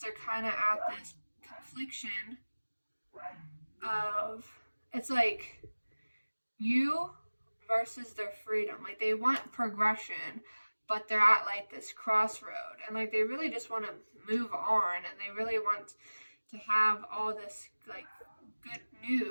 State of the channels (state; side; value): inverted; both; correlation -1.00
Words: they're kind of at this confliction of, it's like you versus their freedom. Like they want progression, but they're at like this crossroad, and like they really just want to move on, and they really want to have all this like good